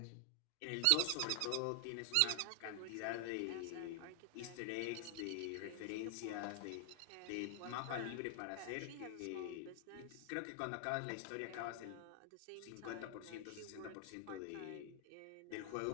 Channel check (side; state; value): both; different; correlation 0.00